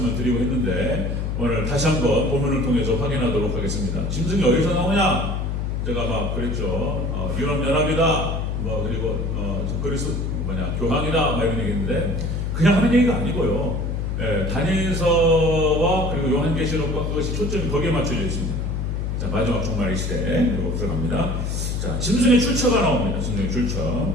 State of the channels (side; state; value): left; noise; hum, 1 dB below the sound